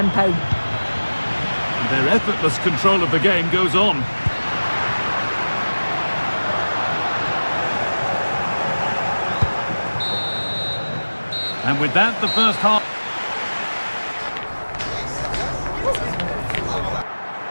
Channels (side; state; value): both; inverted; correlation -1.00